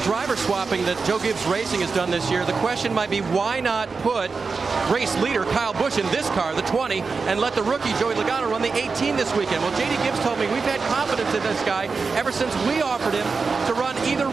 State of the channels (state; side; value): quieter; left; 4.6 dB